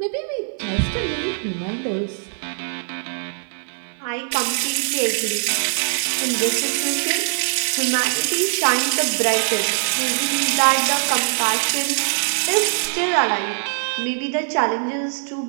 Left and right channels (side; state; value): left; silent; digital silence